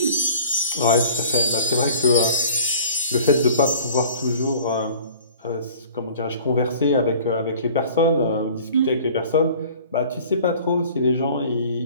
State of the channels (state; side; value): inverted; both; correlation -0.48